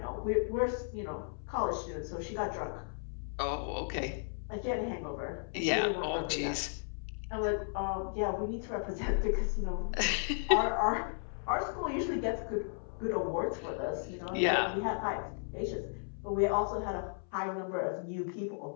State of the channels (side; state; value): right; silent; 55 dB below the other